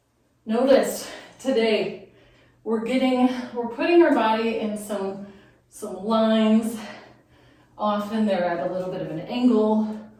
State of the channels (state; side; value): identical; both; correlation 1.00